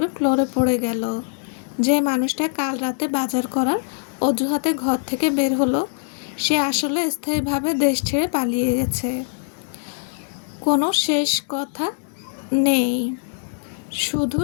ফ্লোরে পড়ে গেল। যে মানুষটা কাল রাতে বাজার করার অজুহাতে ঘর থেকে বের হলো, সে আসলে স্থায়ীভাবে দেশ ছেড়ে পালিয়ে গেছে। কোনো শেষ কথা নেই, শুধু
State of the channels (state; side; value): silent; right; 64 dB below the other